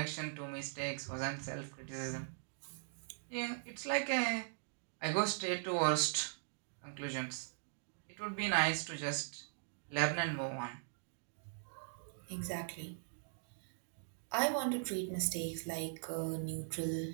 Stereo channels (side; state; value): left; silent; digital silence